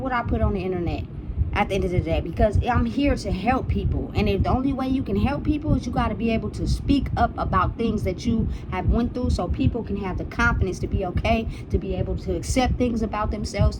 I put on the internet at the end of the day, because I'm here to help people. And if the only way you can help people is you got to be able to speak up about things that you have went through so people can have the confidence to be okay, to be able to accept things about themselves,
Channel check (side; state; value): both; identical; correlation 1.00